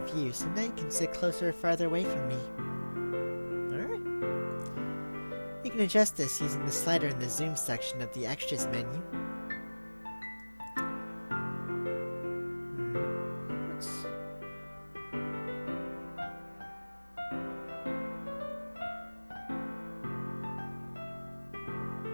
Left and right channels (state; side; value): inverted; both; correlation -1.00